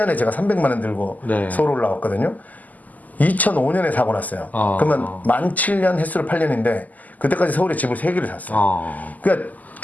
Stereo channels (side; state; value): right; late; 0.080 ms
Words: 제가 300만 원 들고 네. 서울 올라왔거든요. 2005년에 사고 났어요. 그러면 만 7년 횟수로 8년인데 그때까지 서울에 집을 3개를 샀어요. 그러니까